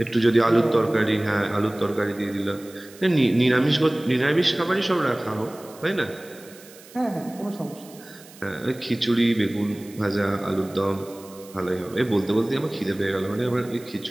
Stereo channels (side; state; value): right; noise; hiss, 21 dB below the sound